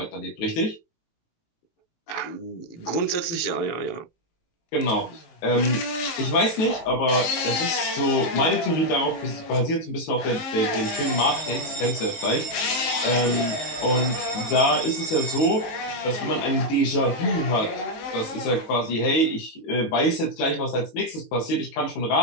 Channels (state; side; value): late; right; 18 ms